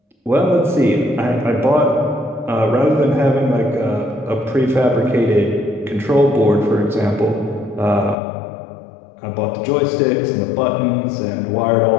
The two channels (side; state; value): right; drops out; at 8.2 s